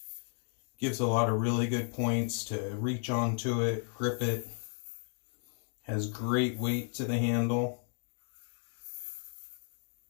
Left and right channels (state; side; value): silent; right; 55 dB below the other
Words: gives a lot of really good points to reach onto it, grip it. Has great weight to the handle.